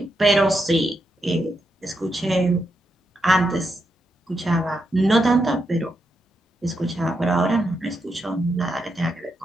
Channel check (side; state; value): both; normal; correlation 0.83